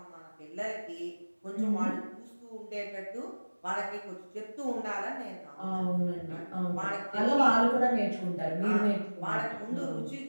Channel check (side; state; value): both; inverted; correlation -1.00